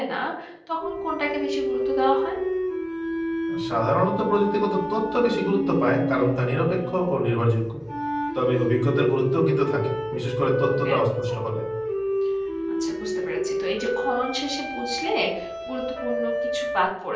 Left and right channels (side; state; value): both; identical; correlation 1.00